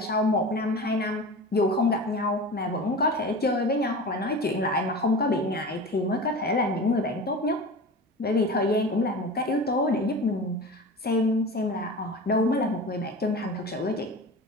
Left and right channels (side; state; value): both; normal; correlation 0.32